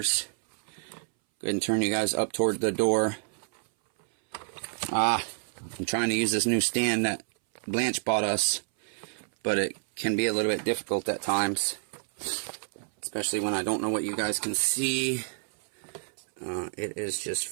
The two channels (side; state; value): left; silent; 59 dB below the other